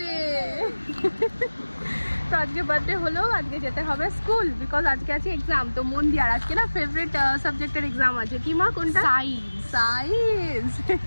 তো আজকে বার্থডে হলো, আজকে যেতে হবে স্কুল, বিকজ আজকে আছে এক্সাম। তো মন দিয়ে, আর আজকে না ফেভারিট সাবজেক্টের এক্সাম আছে। কি মা কোনটা? Science.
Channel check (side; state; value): both; inverted; correlation -1.00